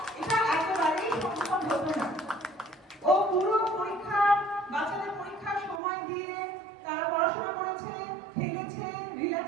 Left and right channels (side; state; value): left; drops out; at 5.8 s